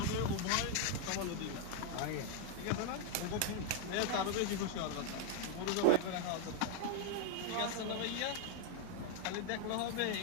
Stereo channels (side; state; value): both; different; correlation 0.01